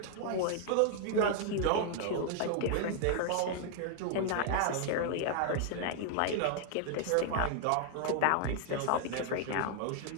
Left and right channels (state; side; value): different; both; correlation 0.00